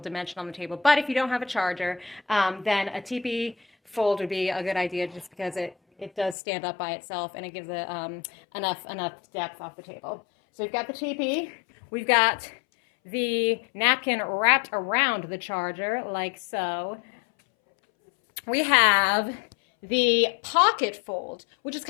on the table. But if you don't have a charger, then a teepee fold would be a good idea, just because it does stand up by itself and it gives it enough depth off the table. So we've got the teepee. We've got the napkin wrapped around the charger like so. We have the pocket fold, which is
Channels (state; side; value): drops out; right; at 6.4 s